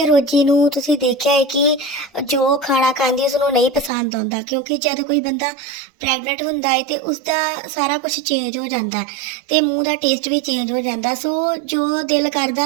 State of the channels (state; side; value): drops out; left; at 3.9 s